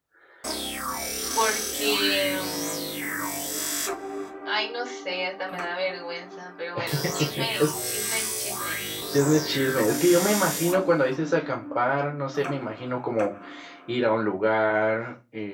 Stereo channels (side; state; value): both; identical; correlation 1.00